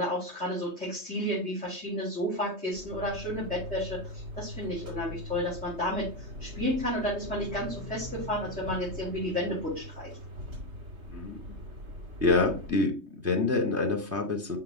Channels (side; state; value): left; late; 3.2 ms